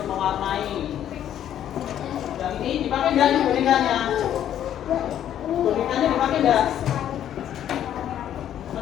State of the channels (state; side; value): quieter; right; 10.7 dB